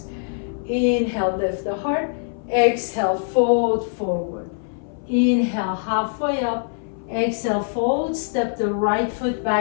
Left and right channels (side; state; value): right; silent; 64 dB below the other